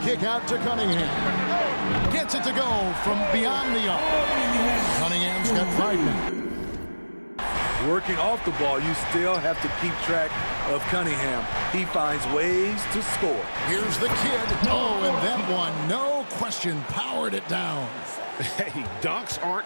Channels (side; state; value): both; inverted; correlation -1.00